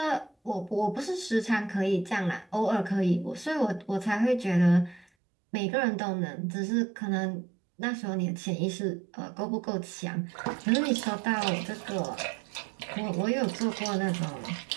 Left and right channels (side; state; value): left; drops out; at 5.1 s